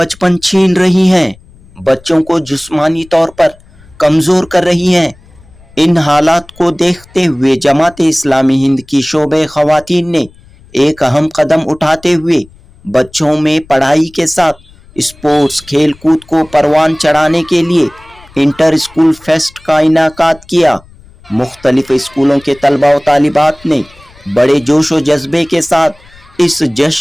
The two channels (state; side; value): noise; left; rumble, 26 dB below the sound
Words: छीन रही हैं, बच्चों को जिस्मानी तौर पर कमजोर कर रही हैं। इन हालात को देखते हुए जमात इस्लामी हिंद की शोबे खवातीन ने एक अहम कदम उठाते हुए बच्चों में पढ़ाई के साथ स्पोर्ट्स खेल कूद को परवान चढ़ाने के लिए इंटर स्कूल फेस्ट का इनाकात किया। मुख्तलिफ स्कूलों के तलबा व तालिबात ने बड़े जोश व जज्बे के साथ इस